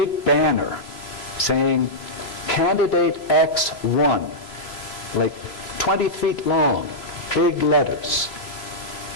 banner saying, candidate X won, like 20 feet long, big letters.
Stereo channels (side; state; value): right; late; 3.0 ms